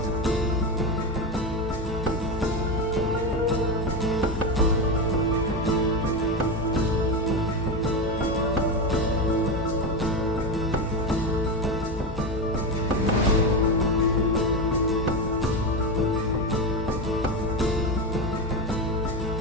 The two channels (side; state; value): both; normal; correlation 0.15